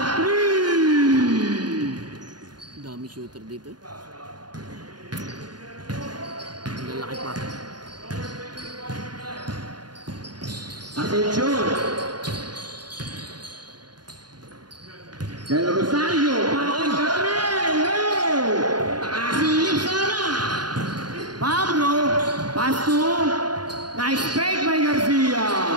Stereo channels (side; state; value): left; late; 0.70 ms